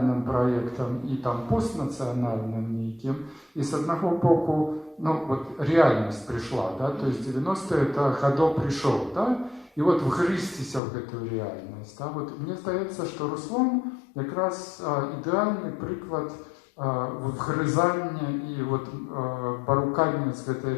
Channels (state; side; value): drops out; right; at 10.8 s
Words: проєктом і там постнаціональним неким. І з одного боку, ну, вот реальність прийшла, да, то есть 90-е это Годо прийшов, да, і от вгризтися в эту реальність. Да. Вот мені здається, що Руслан якраз ідеальний приклад вгризання і от, порукання з этой